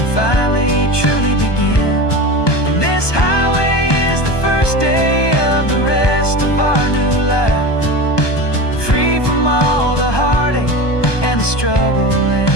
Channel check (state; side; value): late; right; 1.2 ms